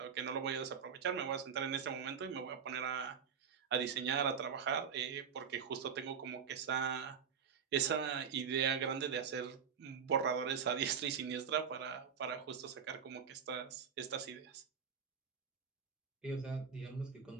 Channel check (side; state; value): left; quieter; 6.9 dB